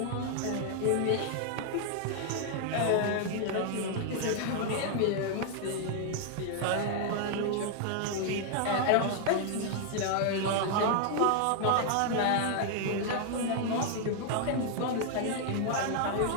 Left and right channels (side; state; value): both; different; correlation 0.00